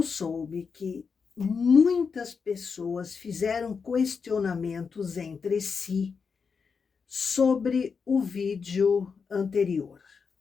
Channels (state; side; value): quieter; right; 5.6 dB